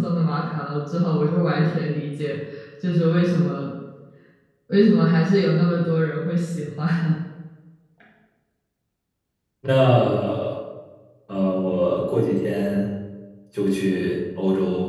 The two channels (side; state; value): both; identical; correlation 1.00